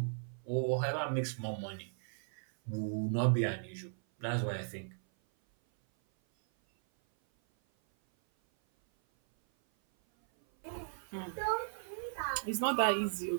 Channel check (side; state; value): left; silent; 54 dB below the other